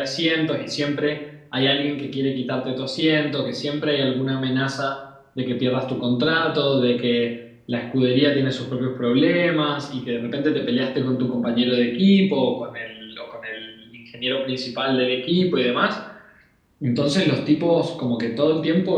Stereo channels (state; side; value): identical; both; correlation 1.00